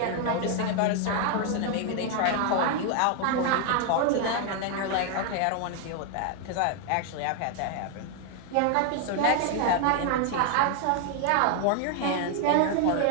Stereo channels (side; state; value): both; different; correlation 0.00